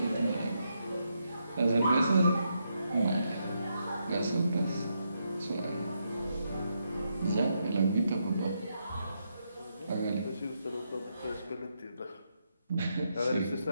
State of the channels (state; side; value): inverted; both; correlation -0.81